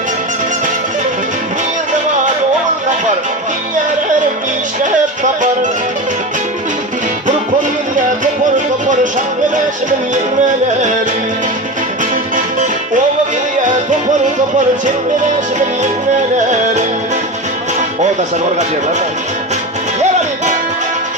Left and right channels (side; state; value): both; normal; correlation 0.24